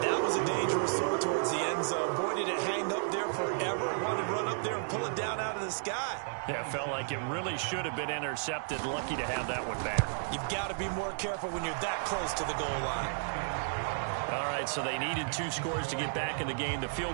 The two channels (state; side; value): silent; left; digital silence